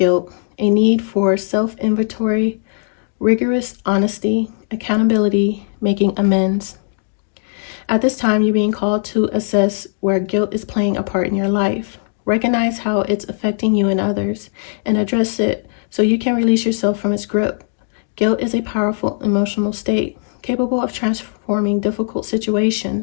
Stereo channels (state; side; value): silent; right; digital silence